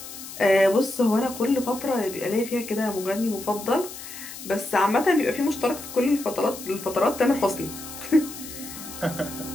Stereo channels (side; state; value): left; noise; hiss, 12 dB below the sound